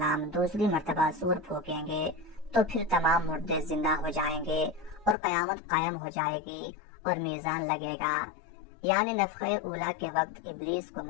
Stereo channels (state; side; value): drops out; right; at 5.2 s